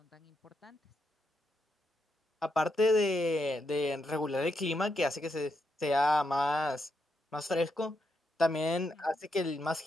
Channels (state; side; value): normal; both; correlation 0.82